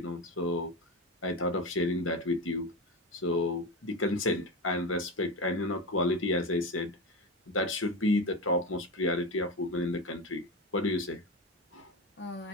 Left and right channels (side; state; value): both; normal; correlation 0.20